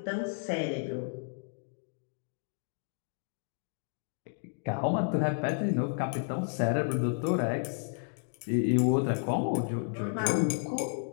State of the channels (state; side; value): silent; right; digital silence